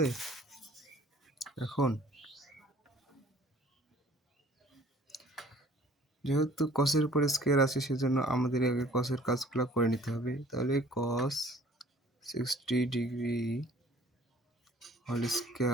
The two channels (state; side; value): normal; both; correlation 0.53